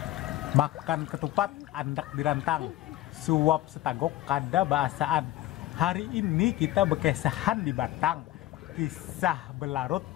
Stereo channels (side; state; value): right; quieter; 15.4 dB